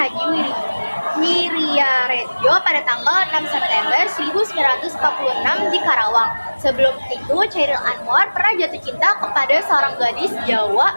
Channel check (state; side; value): inverted; both; correlation -1.00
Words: Wiryaredjo pada tanggal 6 September 1946 di Karawang. Sebelum itu, Khairil Anwar pernah jatuh cinta kepada seorang gadis